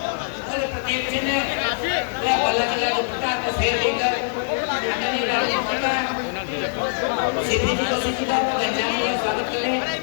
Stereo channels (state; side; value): silent; right; 63 dB below the other